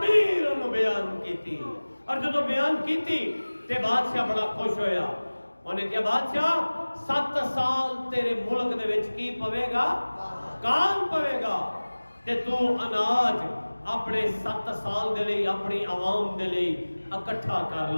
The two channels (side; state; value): both; inverted; correlation -1.00